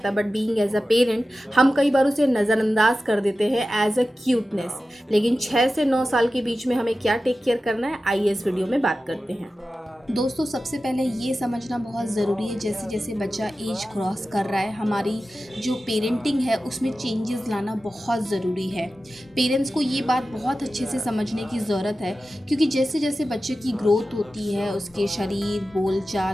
है, but being as a parent हम कई बार उसे नज़रअंदाज कर देते हैं एज अ क्यूटनेस। लेकिन 6 से 9 साल के बीच में हमें क्या टेक केयर करना है, आइए इस वीडियो में बात करते हैं। दोस्तों, सबसे पहले ये समझना बहुत ज़रूरी है, जैसे जैसे बच्चा एज क्रॉस कर रहा है हमारी जो पेरेंटिंग है उसमें चेंजेस लाना बहुत ज़रूरी है। पेरेंट्स को ये बात बहुत अच्छे से समझने की ज़रूरत है, क्योंकि जैसे जैसे बच्चे की ग्रोथ होती है उसके शरीर,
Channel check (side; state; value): both; normal; correlation 0.94